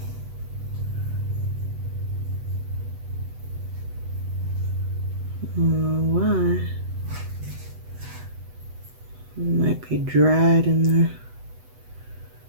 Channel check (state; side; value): late; left; 8.0 ms